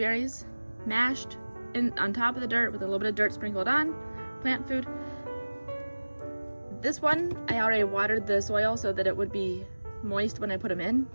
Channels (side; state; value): both; inverted; correlation -1.00